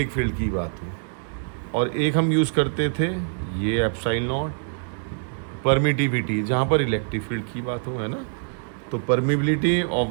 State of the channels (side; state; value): left; silent; digital silence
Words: फील्ड की बात हो, और एक हम यूज़ करते थे ये एप्सिलॉन नॉट परमिटिविटी, जहाँ पर इलेक्ट्रिक फील्ड की बात हो, है ना? तो permeability of